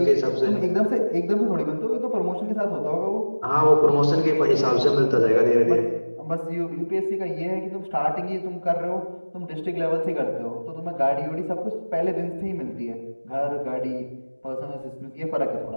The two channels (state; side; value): inverted; both; correlation -1.00